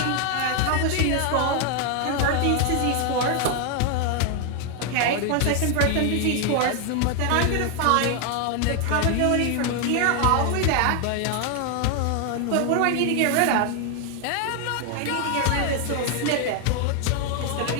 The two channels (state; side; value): different; both; correlation 0.00